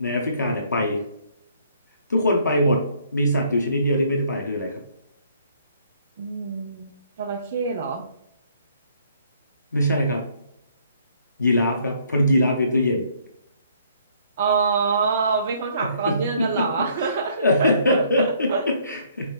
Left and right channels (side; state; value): both; inverted; correlation -0.64